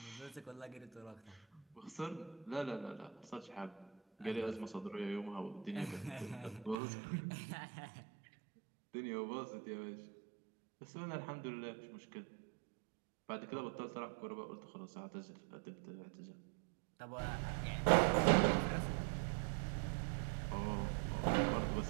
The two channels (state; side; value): drops out; left; at 6.8 s